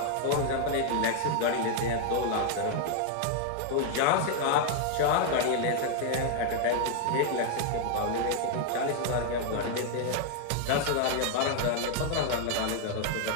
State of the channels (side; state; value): both; different; correlation 0.00